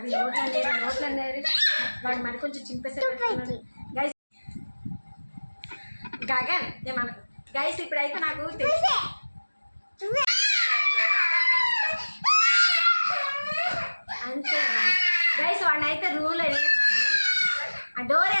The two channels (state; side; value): inverted; both; correlation -1.00